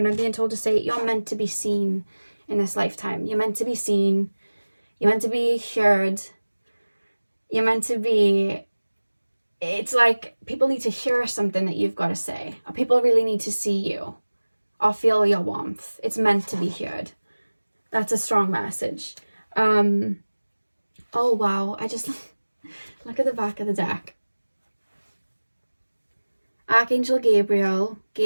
I'm being told to say, you're meant to be seen in this lifetime. You're meant to be seen. You're meant to be heard. You're meant to be... It's like people need to hear something that you've got to say. Or people really need to see you. Or feel your warmth. It's meant to be heard. That's a strong message. Oh, wow. I just... Look at the back of the deck. Archangel Gabriel.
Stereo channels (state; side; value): inverted; both; correlation -1.00